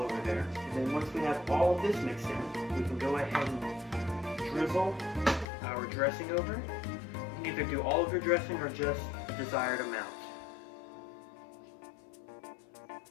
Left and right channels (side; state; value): right; drops out; at 5.5 s